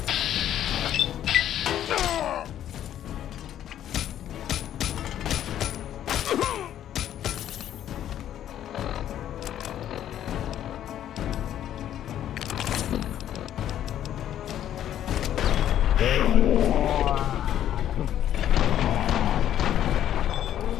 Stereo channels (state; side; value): quieter; right; 11.1 dB